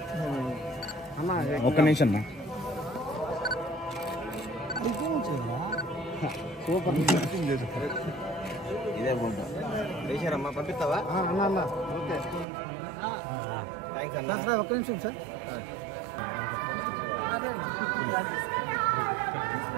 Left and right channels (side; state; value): left; drops out; at 12.5 s